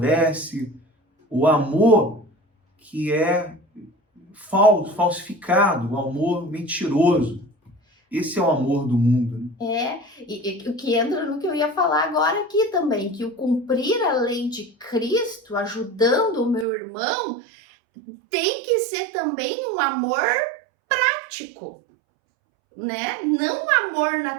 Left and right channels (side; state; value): left; drops out; at 16.7 s